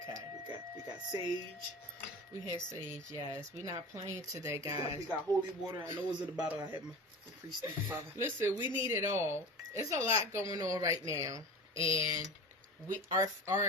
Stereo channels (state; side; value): normal; both; correlation 0.33